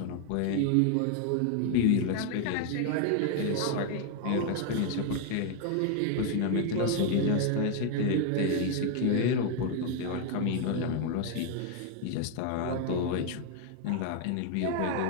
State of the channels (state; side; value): different; both; correlation 0.01